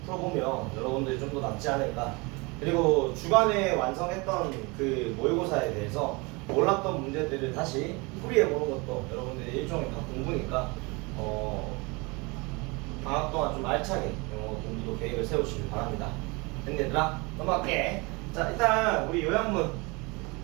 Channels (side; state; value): left; quieter; 27.2 dB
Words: 풀어보면 여러분들이 좀 더 낫지 않을까. 그리고 주간에 완성했던 그 모의고사에 대해서 몰랐던 문제들을 다시 풀이해보는 것도 여러분들의 일종의 다 공부니까 방학 동안 좀 알차게 공부도 계획을 세우시길 바랍니다. 얘들아 넘어갈게. 자, 일단 우리 요양문